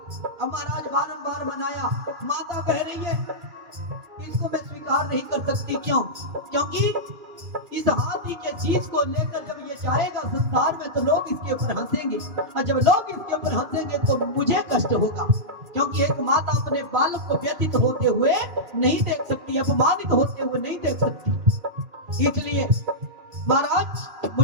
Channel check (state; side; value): late; left; 2.6 ms